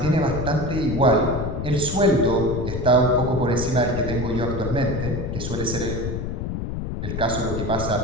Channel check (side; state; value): left; noise; rumble, 4 dB below the sound